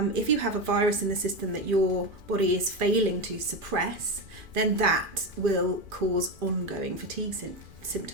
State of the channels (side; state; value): left; late; 2.5 ms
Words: if you have a virus in the system that your body is failing to suppress, then that will cause ongoing fatigue